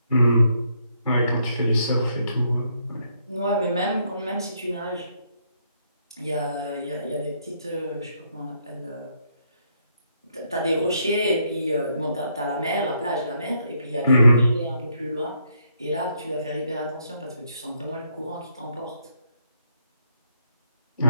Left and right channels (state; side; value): inverted; both; correlation -0.73